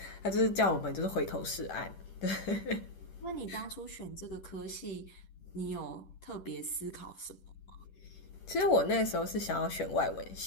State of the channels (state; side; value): late; right; 10 ms